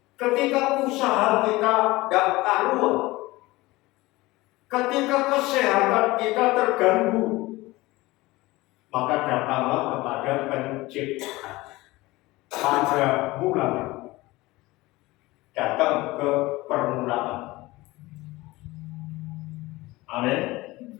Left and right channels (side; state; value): right; quieter; 20.2 dB